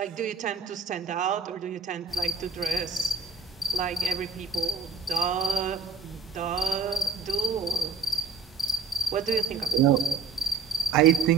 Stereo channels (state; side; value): quieter; left; 4.8 dB